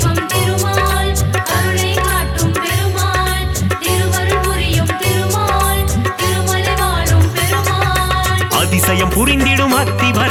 திருமால் கருணை காட்டும் பெருமாள் திருவருள் புரியும் திருமால் திருமலை வாழும் பெருமாள் அதிசயம் புரிந்திடும்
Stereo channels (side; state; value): both; identical; correlation 1.00